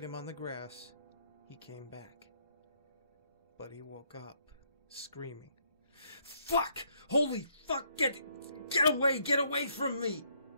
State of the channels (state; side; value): inverted; both; correlation -0.71